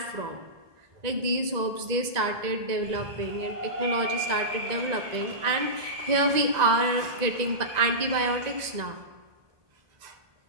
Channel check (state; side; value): late; left; 1.9 ms